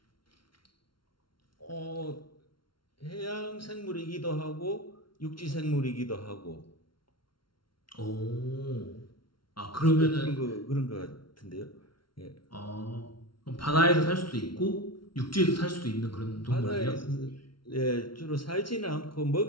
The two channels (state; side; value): late; right; 0.73 ms